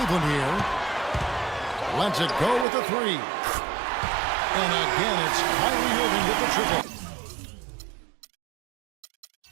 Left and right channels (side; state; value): left; drops out; at 2.7 s